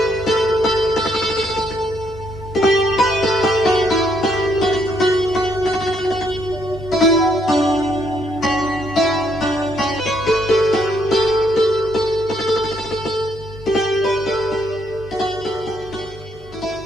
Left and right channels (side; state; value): both; normal; correlation 0.72